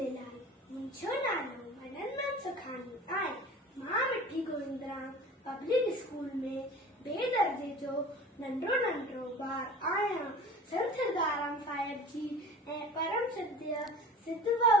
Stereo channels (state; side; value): normal; both; correlation 0.40